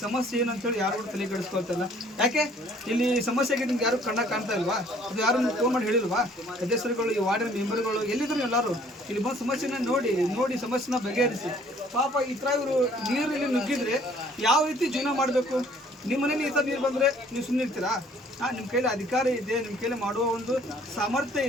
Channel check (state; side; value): normal; both; correlation 0.58